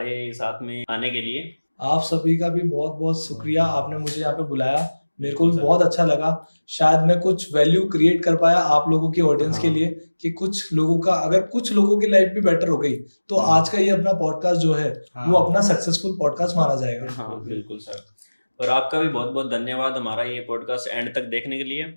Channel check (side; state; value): both; inverted; correlation -1.00